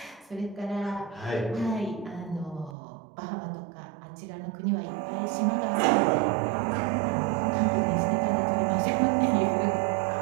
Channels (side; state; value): left; drops out; at 2.8 s